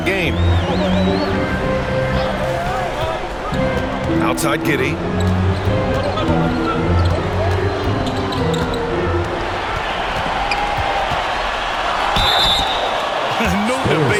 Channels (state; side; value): identical; both; correlation 1.00